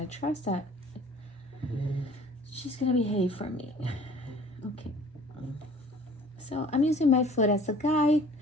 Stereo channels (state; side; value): normal; both; correlation 0.50